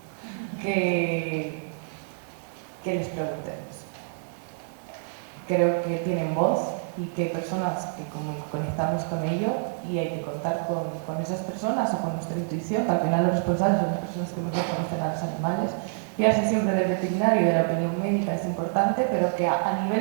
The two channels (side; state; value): left; silent; digital silence